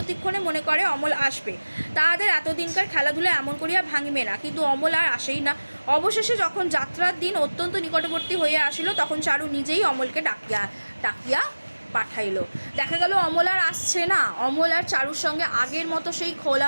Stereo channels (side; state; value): both; inverted; correlation -1.00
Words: মনে করে অমল আসবে, তাহাদের এতদিনকার খেলাধুলা এমন করিয়া ভাঙিবে না। কিন্তু অমল আর আসেই না। অবশেষে যখন যাত্রার দিন অত্যন্ত নিকটবর্তী হইয়া আসিল, তখন চারু নিজেই অমলকে ডাকিয়া পাঠাইল। দেখা গেল অমল আর আসছে না। অমল আর চারুর সঙ্গে আগের মতো সেই